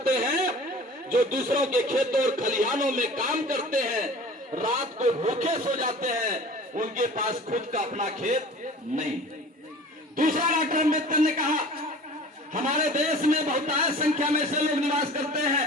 हैं जो दूसरों के खेतों और खलिहानों में काम करते हैं, रात को भूखे सो जाते हैं, उनके पास खुद का अपना खेत नहीं। दूसरा डॉक्टर अंबेडकर ने कहा हमारे देश में बहुतायत संख्या में से लोग निवास करते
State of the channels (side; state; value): both; normal; correlation 0.43